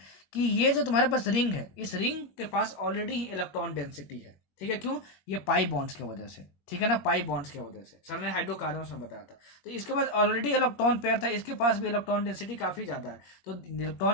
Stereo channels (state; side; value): late; right; 21 ms